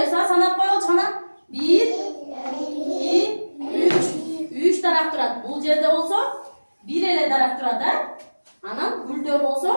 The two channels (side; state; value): both; inverted; correlation -1.00